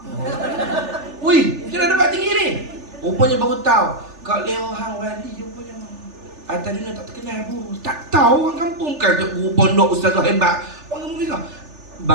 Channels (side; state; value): left; late; 3.4 ms